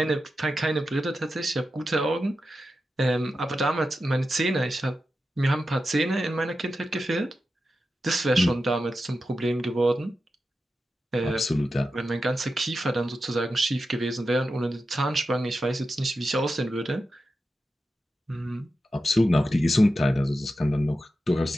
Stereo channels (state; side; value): normal; both; correlation 0.91